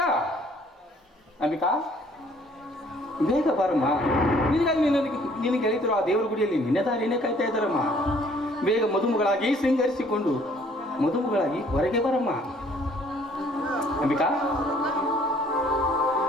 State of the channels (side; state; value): both; normal; correlation 0.59